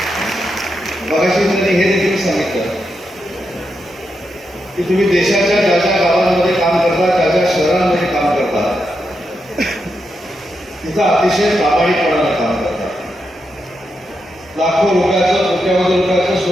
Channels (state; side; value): normal; both; correlation 0.85